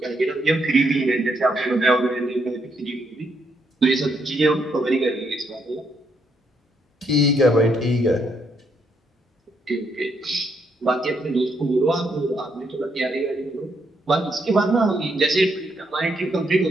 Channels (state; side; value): normal; both; correlation 0.76